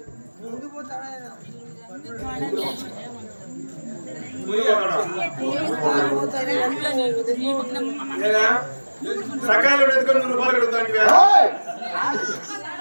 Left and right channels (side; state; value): both; inverted; correlation -1.00